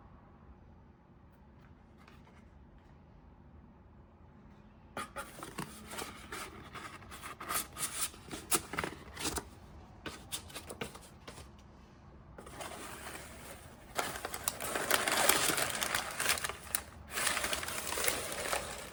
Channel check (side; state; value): both; identical; correlation 1.00